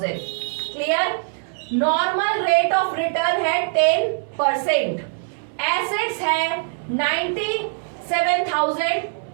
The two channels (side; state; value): left; silent; 64 dB below the other